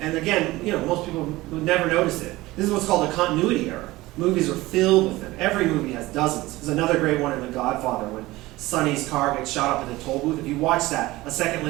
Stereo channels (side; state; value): left; quieter; 19.0 dB